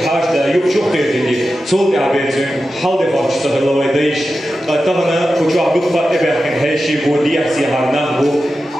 حاج دا يبشوف تيجي صوت عبيتين حال دفاع شتغل الله يديش طبعا كوشوا عبقى إبراهيم هيشي بودي أحسي هرنا بو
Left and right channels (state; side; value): normal; both; correlation 0.92